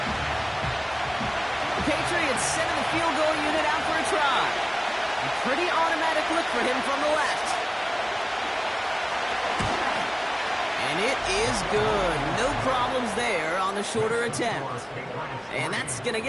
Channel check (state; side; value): identical; both; correlation 1.00